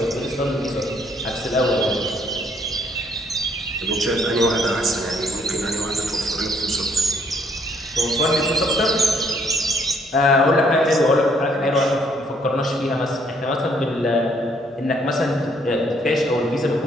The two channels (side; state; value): both; normal; correlation 0.67